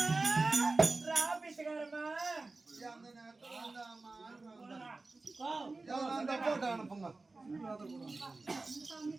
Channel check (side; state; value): left; quieter; 3.4 dB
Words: ராபிஸ்கரமா அந்த நேரத்துல அந்த அந்த போட்டோ அனுப்புங்க.